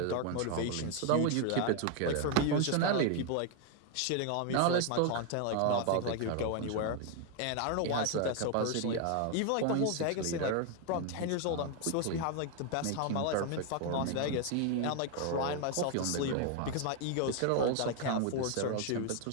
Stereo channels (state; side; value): different; both; correlation 0.01